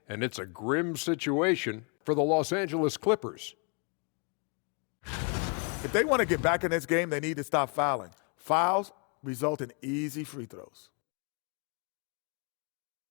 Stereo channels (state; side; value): quieter; right; 36.5 dB